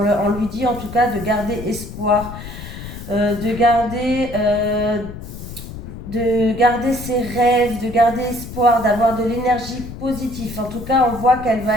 lui dit en tout cas de garder espoir, de garder de garder ses rêves, de garder espoir, d'avoir de l'énergie positive. En tout cas, on voit qu'elle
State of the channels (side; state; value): left; noise; rumble, 11 dB below the sound